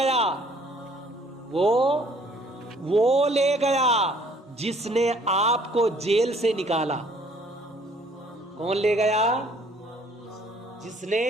وہ لے گیا جس نے آپ کو جیل سے نکالا۔ کون لے گیا؟ جس نے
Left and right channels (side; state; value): both; normal; correlation 0.60